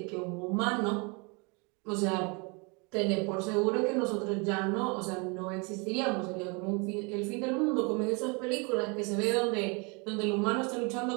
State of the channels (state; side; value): quieter; left; 31.1 dB